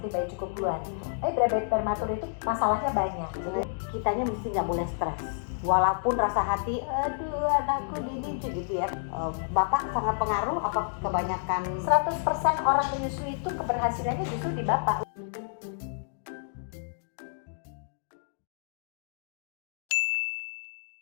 bayi cukup bulan. Tapi bayi prematur itu masalahnya banyak. Jadi kitanya mesti nggak boleh stres. Walaupun rasa hati, aduh anakku ini gitu ya. Bapak sangat pengaruh apa kebanyakan? 100% orang menyusui itu keberhasilannya justru di bapak.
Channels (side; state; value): right; silent; digital silence